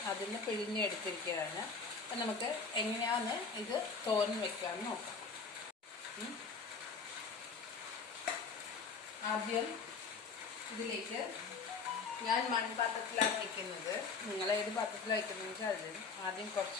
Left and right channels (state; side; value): quieter; right; 4.9 dB